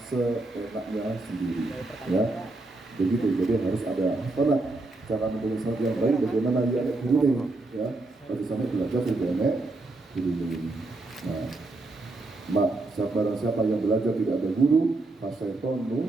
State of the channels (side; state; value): left; quieter; 3.1 dB